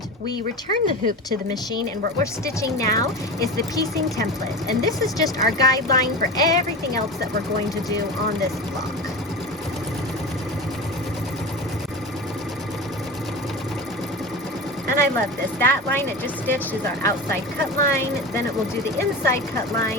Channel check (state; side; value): normal; both; correlation 0.28